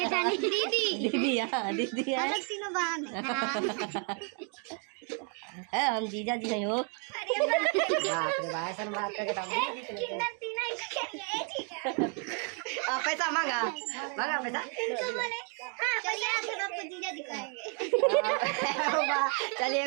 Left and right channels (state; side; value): quieter; left; 39.7 dB